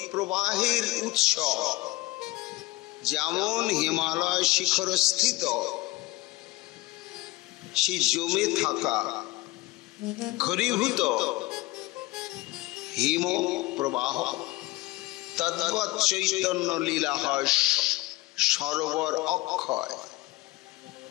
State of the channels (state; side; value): quieter; right; 20.4 dB